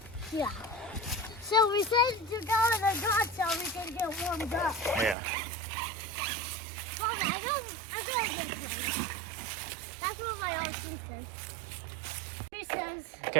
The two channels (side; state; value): left; drops out; at 5.2 s